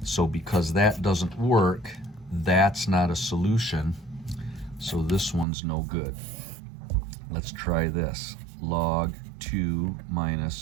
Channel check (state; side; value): drops out; left; at 5.5 s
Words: So because that doesn't work, that's not a solution. So this one's no good. Let's try this. Log 2